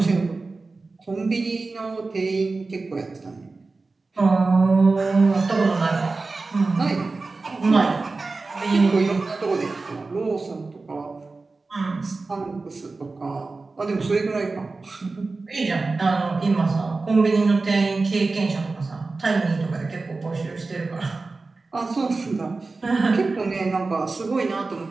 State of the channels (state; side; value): quieter; left; 3.7 dB